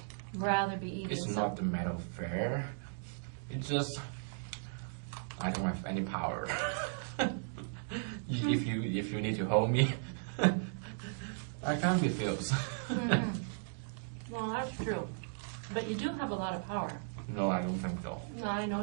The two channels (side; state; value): left; silent; digital silence